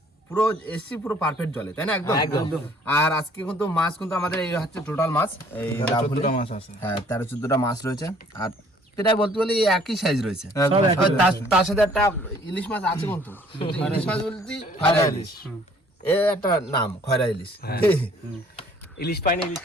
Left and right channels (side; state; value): both; normal; correlation 0.58